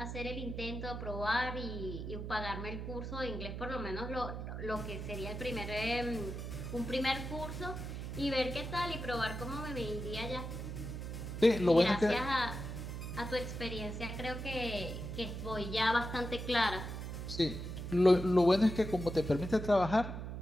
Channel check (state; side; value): noise; right; hum, 6 dB below the sound